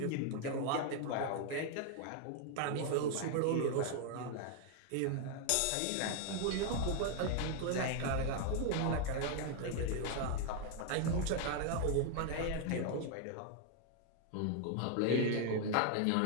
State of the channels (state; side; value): different; both; correlation 0.00